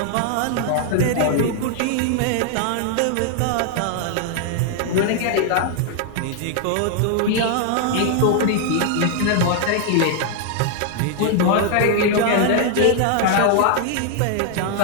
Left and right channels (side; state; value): both; different; correlation 0.00